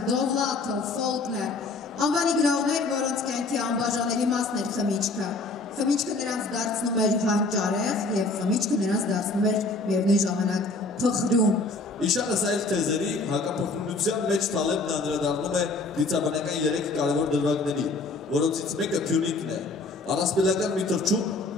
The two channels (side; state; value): right; quieter; 3.4 dB